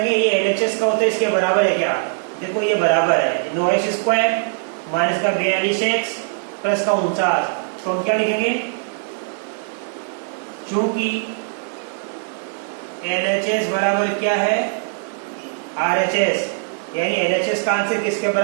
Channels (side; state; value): left; silent; 56 dB below the other